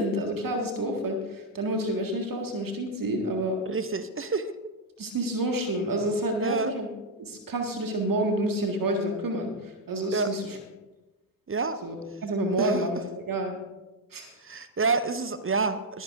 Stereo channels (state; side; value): normal; both; correlation 0.01